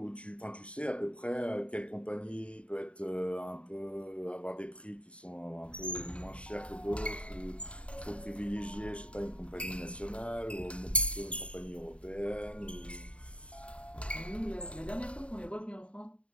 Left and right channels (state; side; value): late; right; 0.061 ms